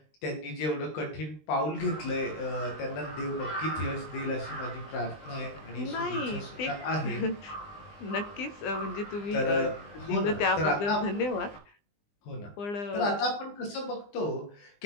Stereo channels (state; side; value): late; right; 20 ms